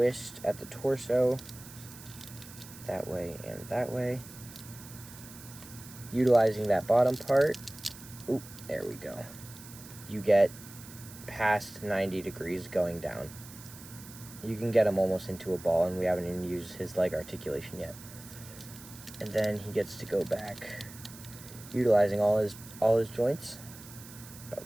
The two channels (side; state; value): right; noise; hiss, 17 dB below the sound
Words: at the torso, that way and that way. Utilizing that bottom part, oop, there we go. You get past 90 degrees going down. You can get him almost into a ball, and we haven't even used his leg articulation yet. And then he gets to go back, utilizing all his joints,